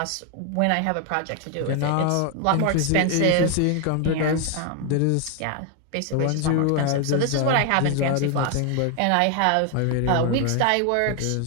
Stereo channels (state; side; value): different; both; correlation 0.00